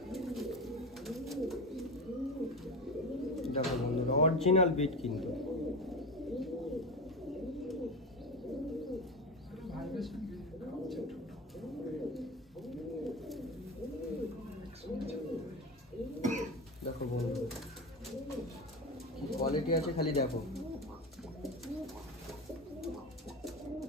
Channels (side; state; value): both; normal; correlation 0.23